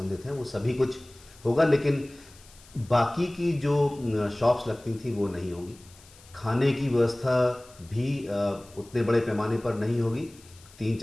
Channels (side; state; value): left; noise; hiss, 24 dB below the sound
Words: हैं वो सभी कुछ होगा। लेकिन बाकी की जो शॉप्स लगती थी वो नहीं होगी। खाने की व्यवस्था भी उतने बड़े पैमाने पर नहीं होगी।